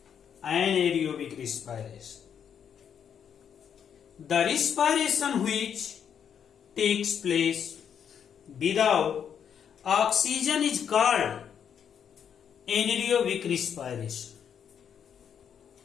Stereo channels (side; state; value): right; quieter; 8.1 dB